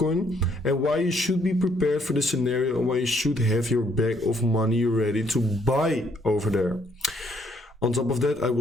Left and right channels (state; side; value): normal; both; correlation 0.68